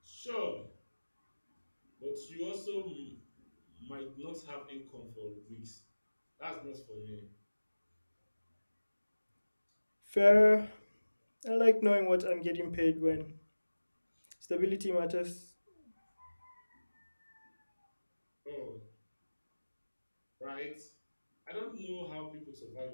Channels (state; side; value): inverted; both; correlation -1.00